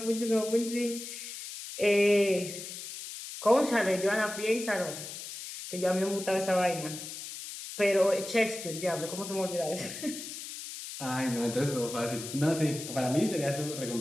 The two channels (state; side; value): noise; left; hiss, 9 dB below the sound